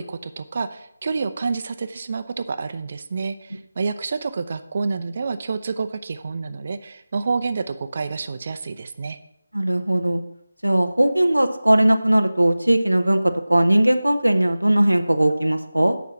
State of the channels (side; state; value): both; inverted; correlation -0.98